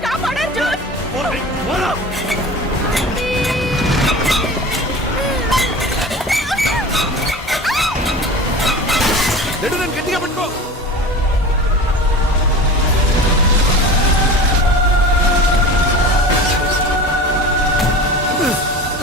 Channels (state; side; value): normal; both; correlation 0.35